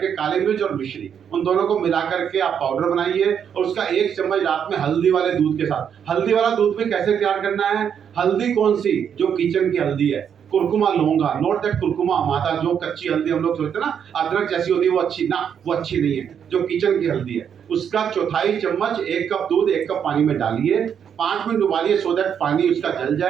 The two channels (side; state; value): left; quieter; 8.1 dB